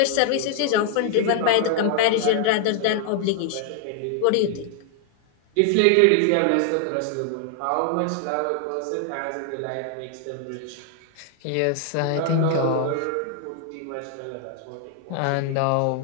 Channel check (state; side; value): different; both; correlation 0.00